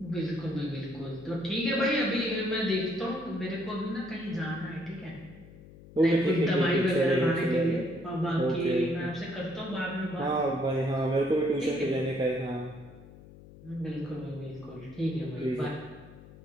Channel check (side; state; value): left; noise; hum, 19 dB below the sound